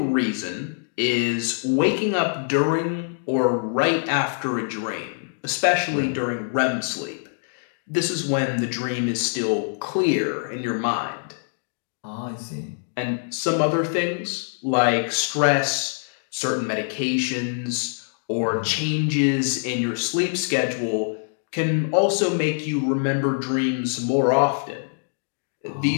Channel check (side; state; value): right; silent; digital silence